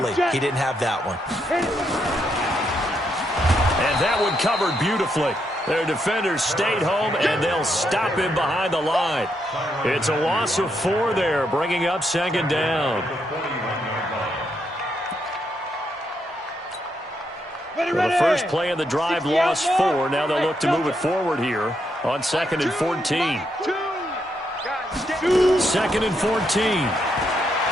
he didn't have that one. And that one covered beautifully. Their defenders stayed home, and they'll stop him behind the line. It's a loss of 4 there, bringing up 2nd down. Well, the first play of the drive lost 4. Now they'll look to move it forward here on 2nd and 14. 2nd and 14.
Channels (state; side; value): normal; both; correlation 0.79